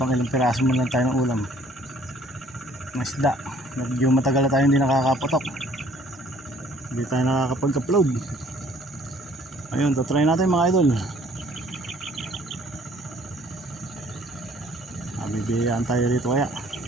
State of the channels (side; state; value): both; normal; correlation 0.58